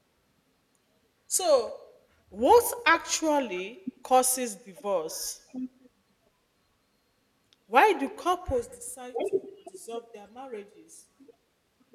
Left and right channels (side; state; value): both; identical; correlation 1.00